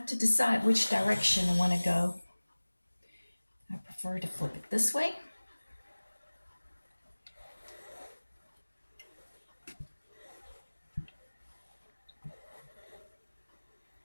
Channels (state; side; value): inverted; both; correlation -1.00